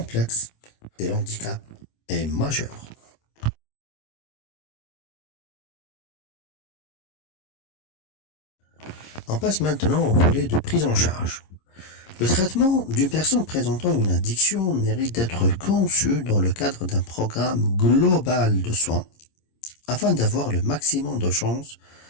et l'handicap est majeur. On passe maintenant au volet de prise en charge. Le traitement d'une personne présentant une addiction mérite d'être conçu dans le cadre d'un programme global de soins afin d'avoir le maximum de chances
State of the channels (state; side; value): late; right; 26 ms